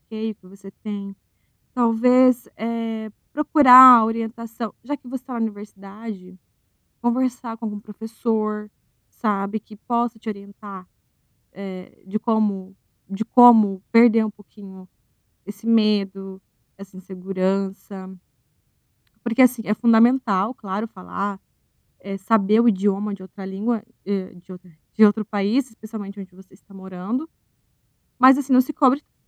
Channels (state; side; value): identical; both; correlation 1.00